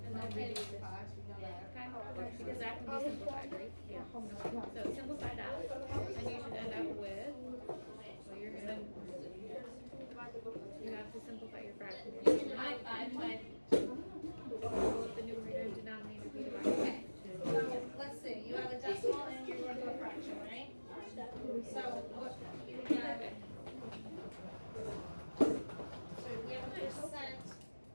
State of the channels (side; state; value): both; inverted; correlation -1.00